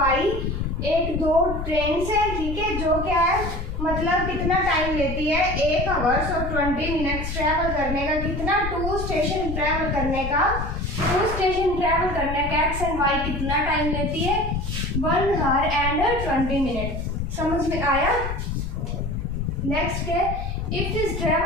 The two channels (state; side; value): noise; left; rumble, 5 dB below the sound